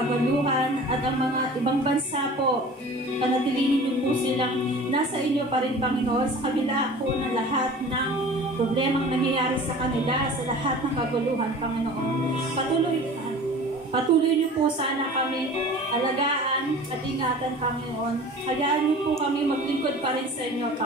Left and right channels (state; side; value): normal; both; correlation 0.42